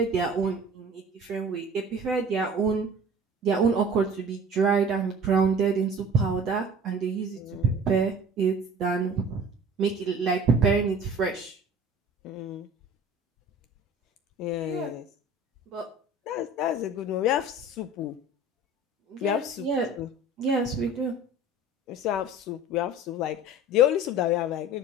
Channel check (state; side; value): normal; both; correlation 0.43